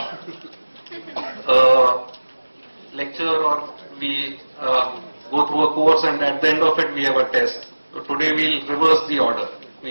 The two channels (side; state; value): both; inverted; correlation -1.00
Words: a lecture or we go through a course and at the end of it we have a test. So today we'll reverse the order.